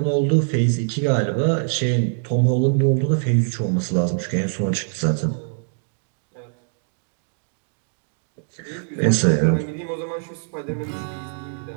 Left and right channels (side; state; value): left; silent; digital silence